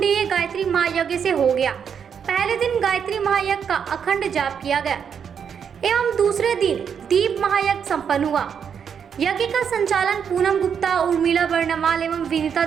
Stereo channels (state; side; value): quieter; left; 7.4 dB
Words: गायत्री महायज्ञ से हो गया। पहले दिन गायत्री महायज्ञ का अखंड जाप किया गया एवं दूसरे दिन दीप महायज्ञ संपन्न हुआ। यज्ञ का संचालन पूनम गुप्ता, उर्मिला बर्णवाल एवं विनीता